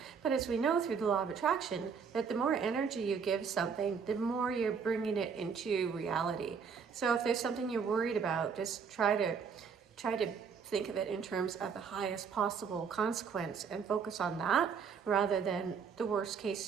But as we know through the law of attraction, that the more energy you give something, the more you're bringing it into reality. So if there's something you're worried about, just try to think of it in terms of the highest possible consequence and focus on that rather than the worst case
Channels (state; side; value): quieter; left; 6.2 dB